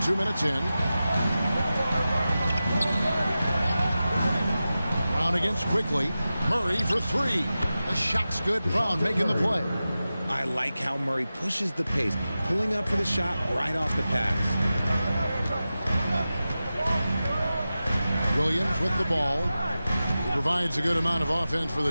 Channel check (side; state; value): both; inverted; correlation -0.94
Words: 2 minutes in. Brown against quickly. Murray for three. The shot's good. Brown making the play. I like how Murray pushes the pace, pulling up for the shot right off the pass. Williams with the ball. He provides a good amount of offense for the